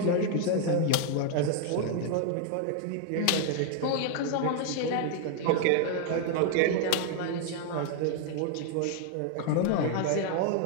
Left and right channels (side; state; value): both; different; correlation 0.00